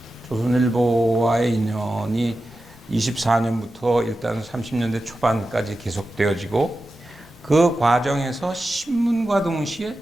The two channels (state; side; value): normal; both; correlation 0.92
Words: 조선일보와의 인연이 24년부터 일단 30년대 초반까지 계속되어지고, 그 과정에서 신문과 동시에